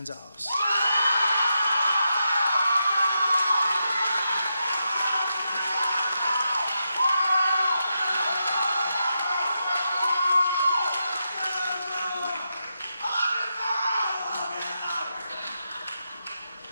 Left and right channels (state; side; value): inverted; both; correlation -0.86